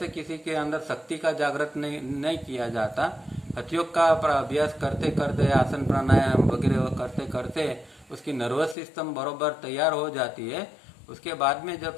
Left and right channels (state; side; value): drops out; right; at 8.8 s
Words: किसी के अंदर शक्ति का जागृत नहीं किया जाता। हठयोग का अभ्यास करते करते, आसन प्राणायाम वगैरह करते करते उसकी नर्वस सिस्टम बरोबर तैयार हो जाती है। उसके बाद में जब